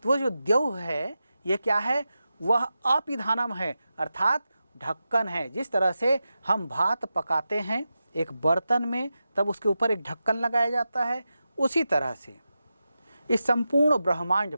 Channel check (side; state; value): both; inverted; correlation -0.91